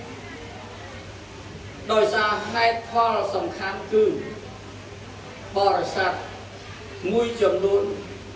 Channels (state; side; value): identical; both; correlation 1.00